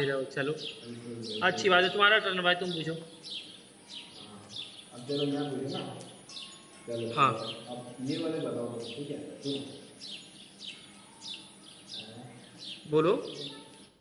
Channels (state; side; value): identical; both; correlation 1.00